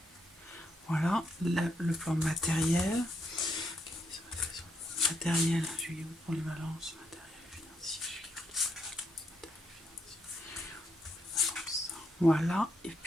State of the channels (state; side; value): normal; both; correlation 0.78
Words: Voilà, le plan matériel. Matériel, juillet août pour les balances. Matériel financier, juillet août pour les balances. Voilà. Et